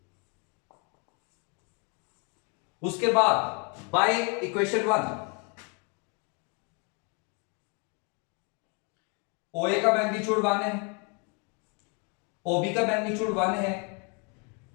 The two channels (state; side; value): quieter; right; 34.1 dB